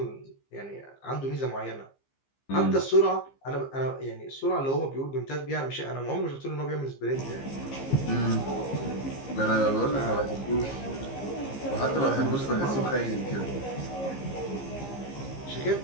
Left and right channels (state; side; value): late; right; 15 ms